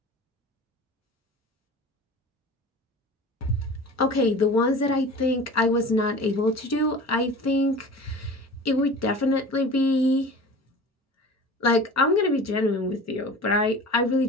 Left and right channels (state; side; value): normal; both; correlation 0.38